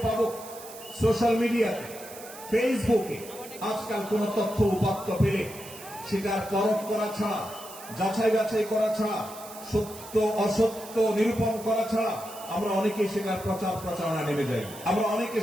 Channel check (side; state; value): right; noise; hiss, 16 dB below the sound